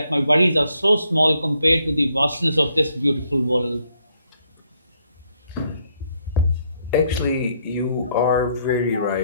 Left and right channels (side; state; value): both; inverted; correlation -0.72